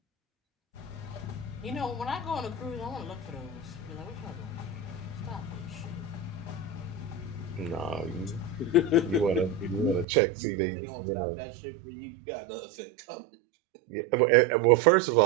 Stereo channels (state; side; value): drops out; left; at 10.1 s